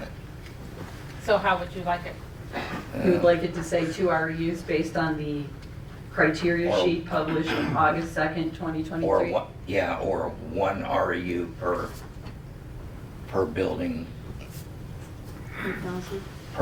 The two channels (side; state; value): both; identical; correlation 1.00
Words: So how would you like it? You would like it to say 2 REUs based on the criteria Or- sheet published on August 2nd, 2023? Or what, yeah, or 1 REU per building, 1,000.